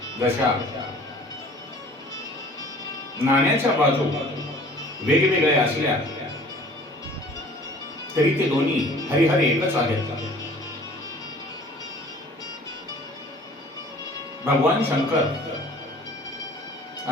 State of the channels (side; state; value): both; normal; correlation 0.49